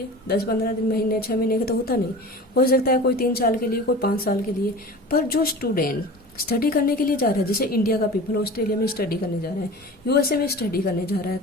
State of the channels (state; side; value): normal; both; correlation 0.36